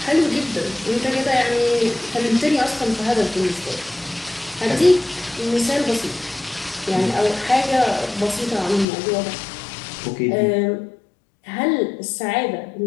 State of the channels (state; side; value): drops out; right; at 8.8 s